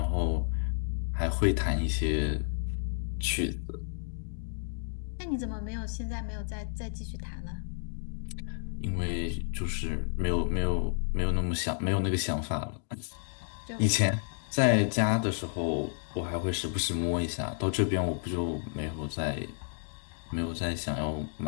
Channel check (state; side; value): silent; right; digital silence